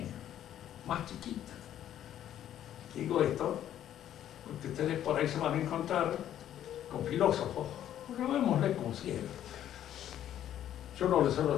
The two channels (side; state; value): right; quieter; 11.2 dB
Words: más chiquita. Digo esto porque ustedes por ahí se van a encontrar con filósofos, llamémosle con ciegos. Yo no les suelo